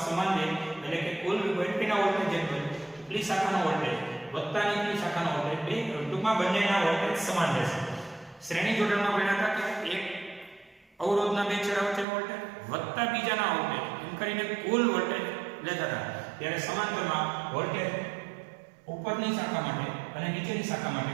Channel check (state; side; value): drops out; left; at 12.1 s